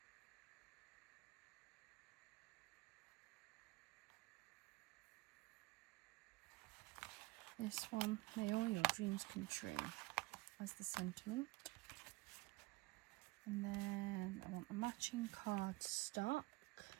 this one. May all your dreams come true, as the sentiment. And then I want a matching card stock.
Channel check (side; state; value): left; quieter; 21.7 dB